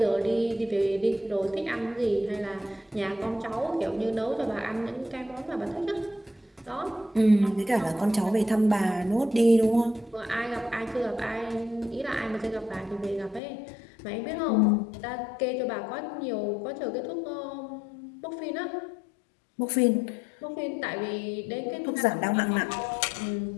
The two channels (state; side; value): drops out; right; at 13.4 s